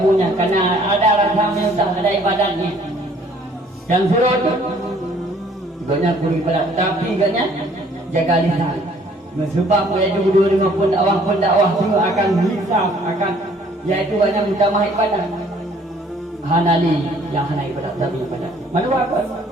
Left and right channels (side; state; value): both; normal; correlation 0.59